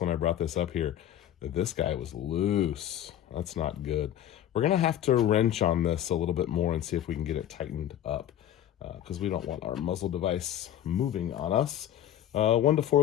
when I brought this up here that this guy was loose. That's not good. We're going to have to wrench on this a little bit more and see if we can get it tightened up because we don't want our muzzle device moving on us. 1 to 4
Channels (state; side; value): quieter; right; 11.2 dB